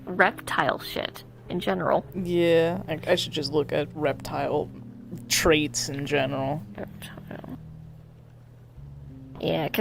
reptile shit in general. Yeah, I should just look at reptile traits in general. Yeah,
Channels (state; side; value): identical; both; correlation 1.00